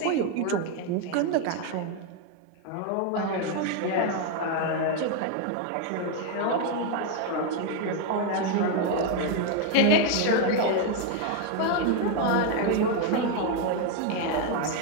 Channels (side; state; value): both; different; correlation 0.01